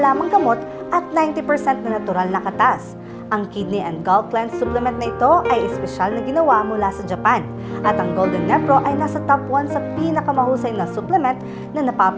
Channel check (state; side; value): identical; both; correlation 1.00